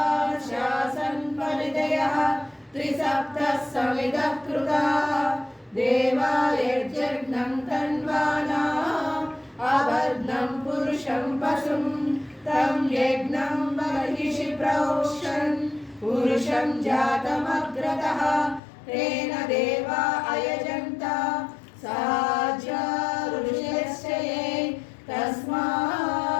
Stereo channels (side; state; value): right; drops out; at 18.6 s